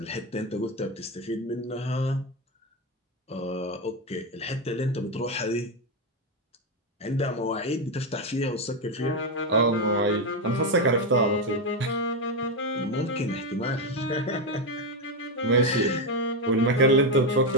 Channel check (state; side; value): normal; both; correlation 0.08